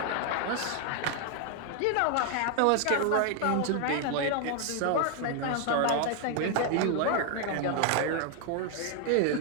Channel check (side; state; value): both; different; correlation 0.00